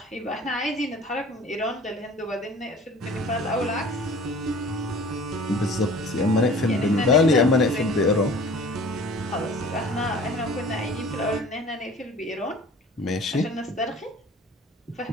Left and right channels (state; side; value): normal; both; correlation 0.46